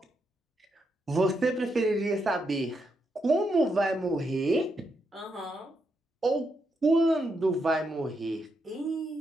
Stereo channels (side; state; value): both; normal; correlation 0.81